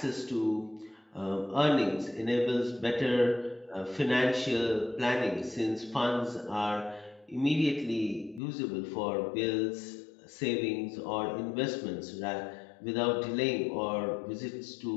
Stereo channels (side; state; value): right; drops out; at 8.4 s